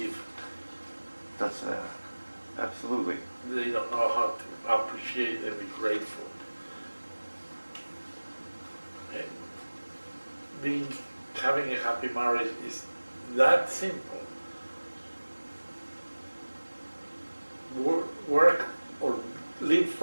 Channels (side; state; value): both; inverted; correlation -1.00